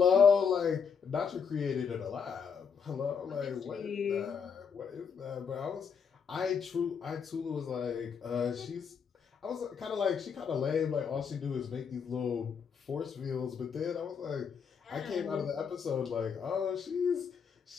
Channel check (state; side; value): quieter; right; 6.4 dB